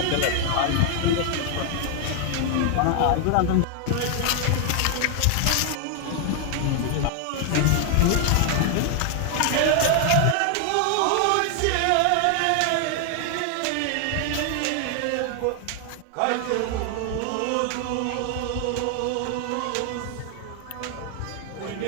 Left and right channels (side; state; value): both; different; correlation 0.00